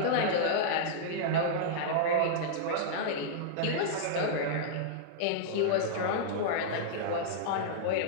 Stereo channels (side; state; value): both; different; correlation -0.02